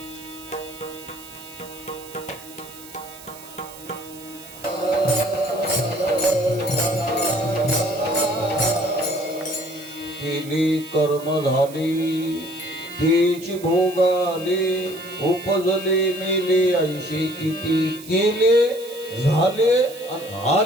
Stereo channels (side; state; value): right; noise; hiss, 17 dB below the sound